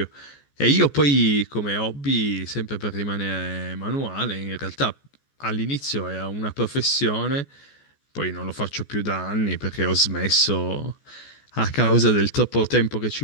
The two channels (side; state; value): right; late; 14 ms